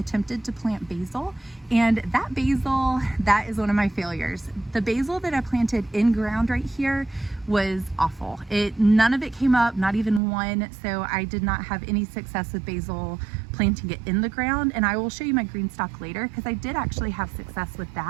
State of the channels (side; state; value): left; drops out; at 10.2 s